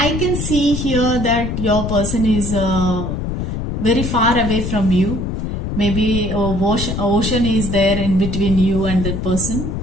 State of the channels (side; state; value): left; noise; rumble, 3 dB below the sound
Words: can see here that your person is very far away from you. Maybe ocean is there in between you and that person.